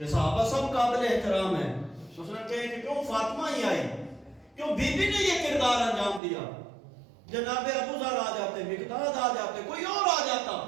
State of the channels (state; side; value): drops out; left; at 6.2 s